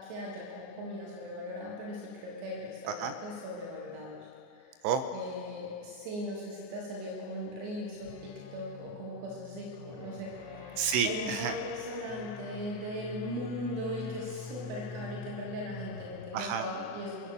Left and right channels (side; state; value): left; late; 24 ms